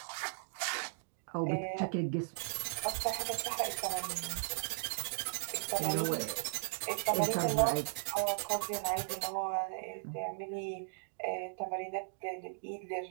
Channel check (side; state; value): left; silent; digital silence